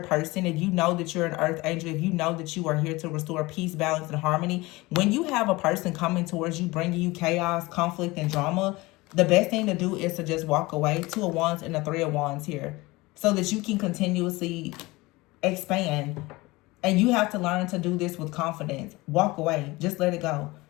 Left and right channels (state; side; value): quieter; right; 21.6 dB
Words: if you know that you're an earth angel, if you know that you are here to restore peace, balance, and harmony, when you have a person coming towards you, bringing you chaos, conflict, and drama, the best thing to do is to just walk away. Two of Wands and the Three of Wands here, so that you can continuously expand. And you have to learn to do this with confidence. Walk away. Just let it go.